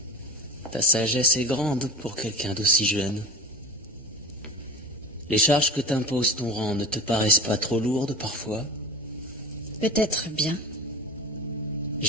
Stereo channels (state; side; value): normal; both; correlation 0.31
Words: Ta sagesse est grande pour quelqu'un d'aussi jeune. Les charges que t'impose ton rang ne te paraissent pas trop lourdes parfois? Peut-être bien.